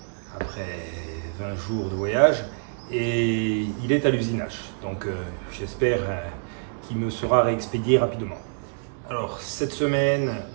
après 20 jours de voyage et il est à l'usinage, donc j'espère qu'il me sera réexpédié rapidement. Alors cette semaine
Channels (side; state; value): left; silent; digital silence